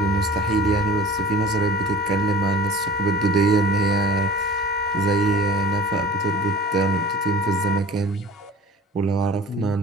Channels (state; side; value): normal; both; correlation 0.43